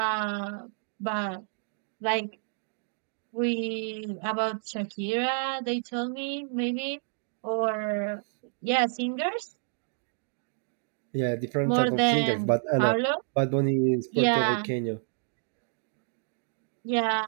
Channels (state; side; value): silent; left; digital silence